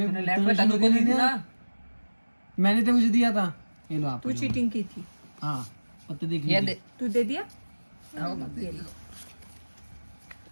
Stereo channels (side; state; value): both; inverted; correlation -1.00